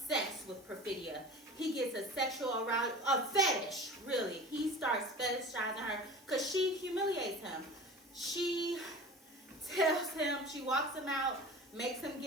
with Perfidia. He gets a sexual arousal, a fetish, really. He starts fetishizing her because she humiliates him. She tells him, she walks him out, makes him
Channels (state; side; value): normal; both; correlation 0.37